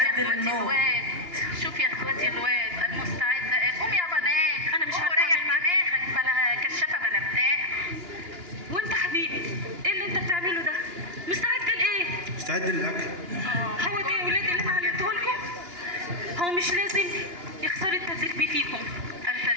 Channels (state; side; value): late; left; 2.9 ms